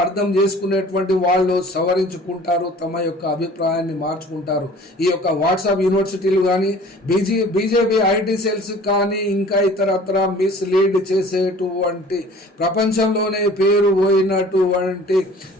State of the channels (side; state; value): both; normal; correlation 0.48